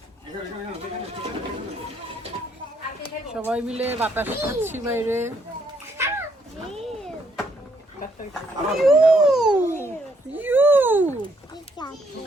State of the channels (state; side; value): normal; both; correlation 0.71